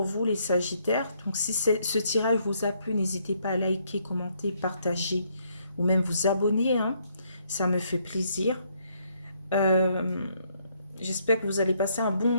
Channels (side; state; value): both; inverted; correlation -0.71